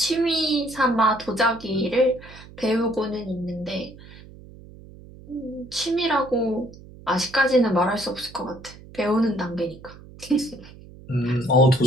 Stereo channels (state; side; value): noise; right; hum, 19 dB below the sound